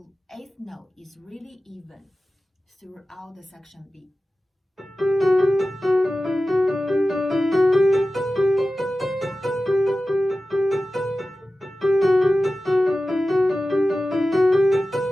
8th note is really even throughout the section B.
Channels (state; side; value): normal; both; correlation 0.95